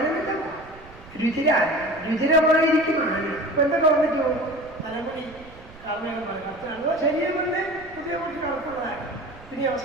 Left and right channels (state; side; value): noise; right; rumble, 21 dB below the sound